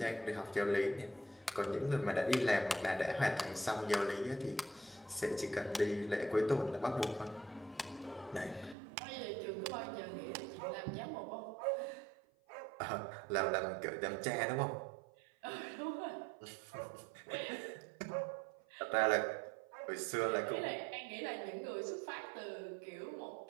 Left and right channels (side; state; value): left; drops out; at 8.8 s